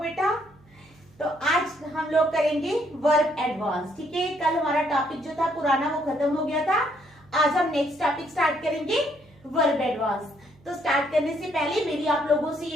तो आज हम लोग करेंगे वर्ब एडवांस। ठीक है, कल हमारा टॉपिक जो था पुराना वो खत्म हो गया था। आज हम नेक्स्ट टॉपिक स्टार्ट करेंगे वर्ब एडवांस। तो स्टार्ट करने से पहले मेरी आप लोगों से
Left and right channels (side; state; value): right; noise; hum, 28 dB below the sound